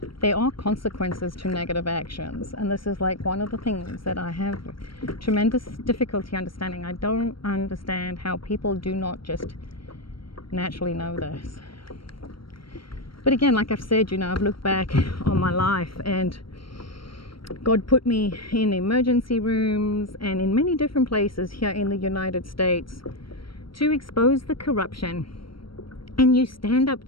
There are consequences to negative actions, and this is like one of the things that I have tremendous difficulty understanding. I don't understand how people do not just naturally know this. But again, like I've said, you know, I've looked back on my life and God put me in emergency rooms and in many different places here in the United States to expose the corruption. And you stand up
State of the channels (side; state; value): right; late; 0.74 ms